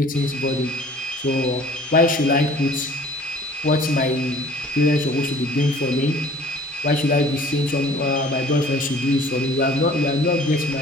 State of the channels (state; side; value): normal; both; correlation 0.50